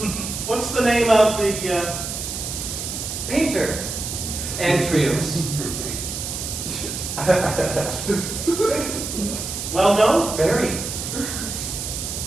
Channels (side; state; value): right; noise; hiss, 5 dB below the sound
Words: What's the name of the, Painter. Antrios. well known? Very.